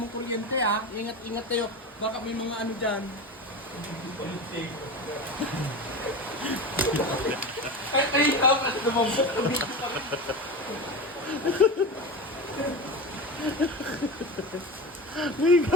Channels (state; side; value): normal; both; correlation 0.26